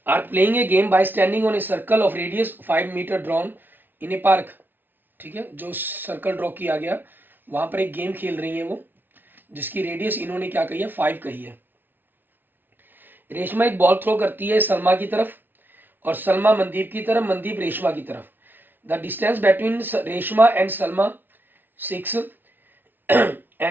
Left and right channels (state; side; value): late; left; 0.094 ms